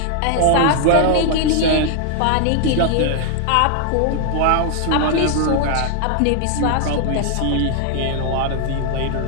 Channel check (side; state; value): both; different; correlation 0.00